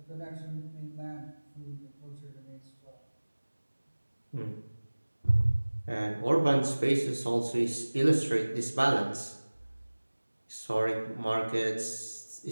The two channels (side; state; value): both; inverted; correlation -1.00